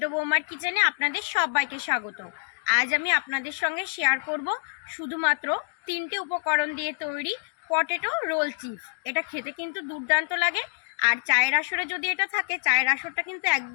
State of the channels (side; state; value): right; silent; digital silence